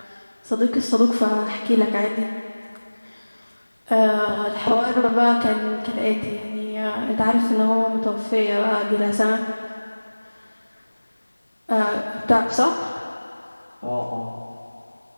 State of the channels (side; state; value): both; inverted; correlation -1.00